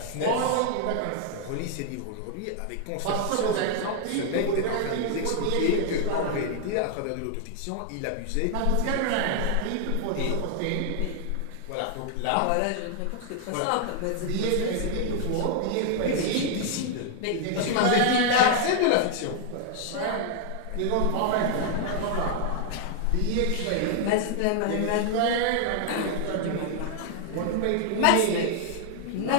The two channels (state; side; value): different; both; correlation 0.00